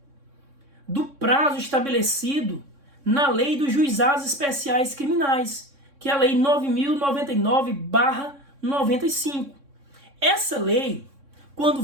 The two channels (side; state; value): left; late; 3.6 ms